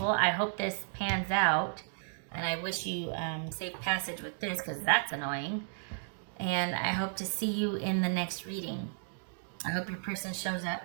I hope this pans out. And I wish you safe passage with this, because that's annoying. And I hope to see you in the next reading. I hope your person shows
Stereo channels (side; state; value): left; silent; digital silence